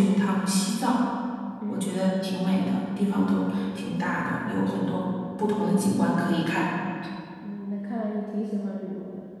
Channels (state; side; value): identical; both; correlation 1.00